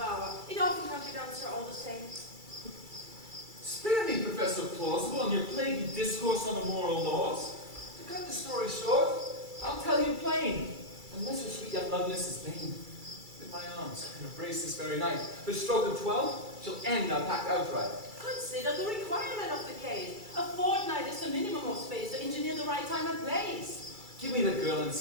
It often comes down, sir, all the same. Spare me, Professor Plausible, and your plaguey discourse on the moral laws. To cut the story short, I'll tell you plain. Unless your sweet young Lovelace is vain, with my arms can embrace this very night. The stroke of 12 shall end our pact outright. Consider the requirement of the case. A fortnight is the minimum of space to engineer the right time and place. Give me the girl in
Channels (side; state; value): left; late; 2.3 ms